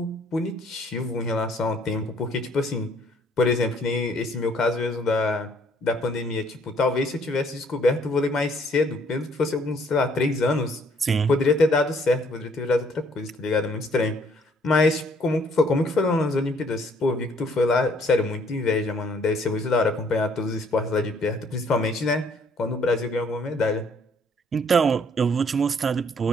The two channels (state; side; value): normal; both; correlation 0.63